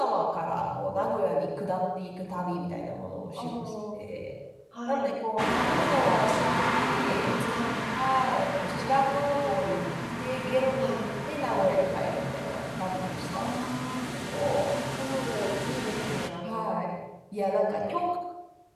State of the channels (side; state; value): both; identical; correlation 1.00